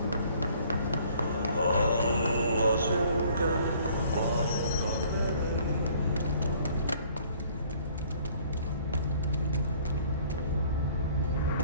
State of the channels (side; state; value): both; inverted; correlation -0.57